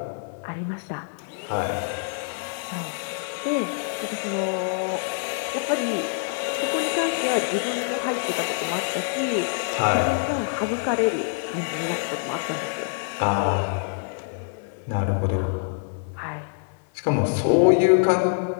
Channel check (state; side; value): silent; right; digital silence